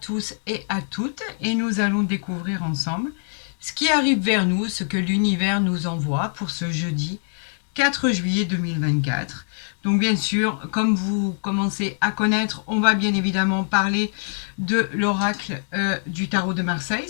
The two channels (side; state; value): right; silent; digital silence